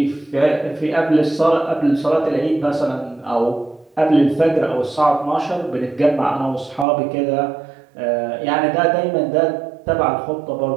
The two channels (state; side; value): drops out; left; at 6.9 s